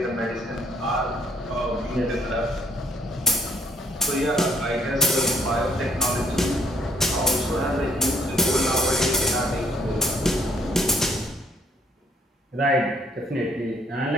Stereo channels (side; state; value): both; normal; correlation 0.65